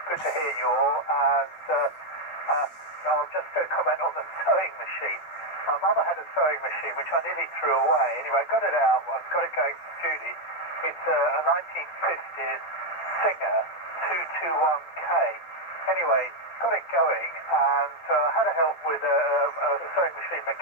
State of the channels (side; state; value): right; late; 12 ms